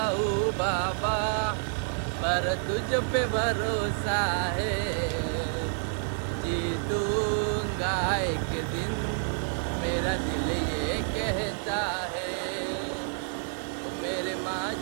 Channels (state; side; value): silent; left; digital silence